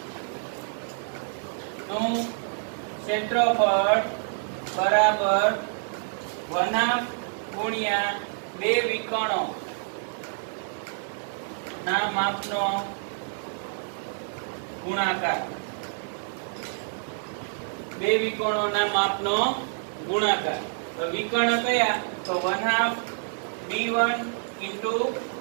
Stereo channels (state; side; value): silent; left; 60 dB below the other